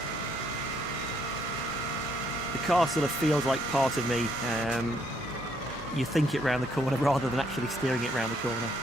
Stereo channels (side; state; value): both; normal; correlation 0.71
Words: car sort of feels like part of me. You think it round the corner rather than actually steering it round the corner.